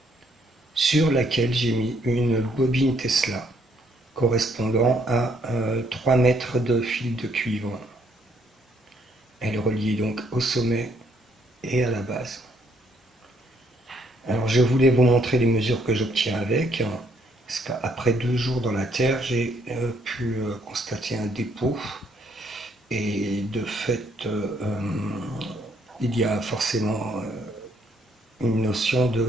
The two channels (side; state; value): both; normal; correlation 0.69